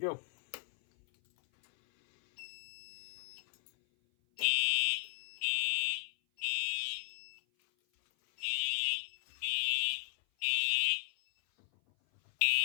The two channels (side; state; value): right; silent; 54 dB below the other